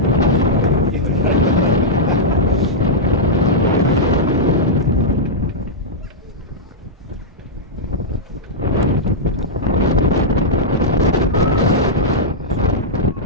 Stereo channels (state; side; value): normal; both; correlation -0.08